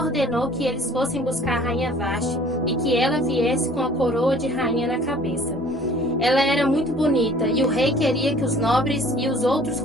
que eles fossem buscar a rainha Vasti e que ela viesse com a coroa de rainha na cabeça. Ela era muito bonita e o rei queria que os nobres e os outros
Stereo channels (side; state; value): both; normal; correlation 0.51